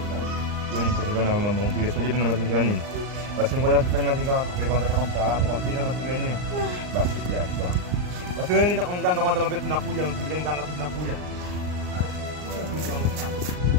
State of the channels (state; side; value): late; left; 39 ms